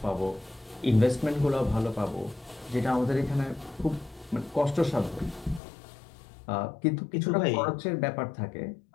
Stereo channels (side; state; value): right; drops out; at 5.6 s